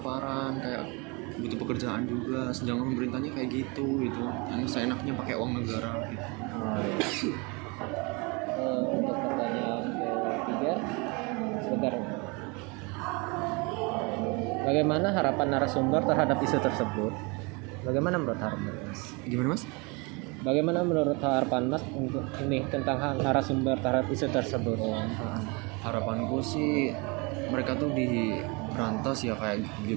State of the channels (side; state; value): left; quieter; 29.1 dB